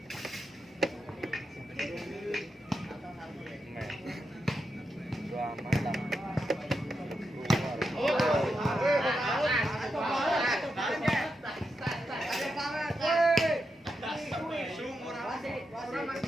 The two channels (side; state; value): both; normal; correlation 0.86